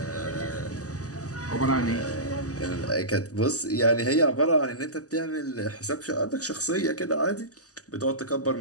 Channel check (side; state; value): right; late; 0.67 ms